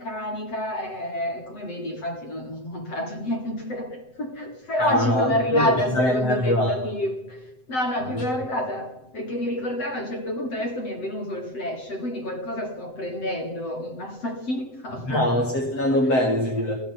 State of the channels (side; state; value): right; late; 7.8 ms